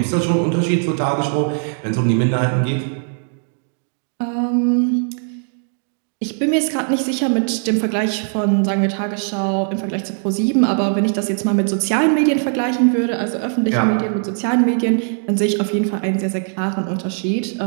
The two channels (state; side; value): silent; left; 59 dB below the other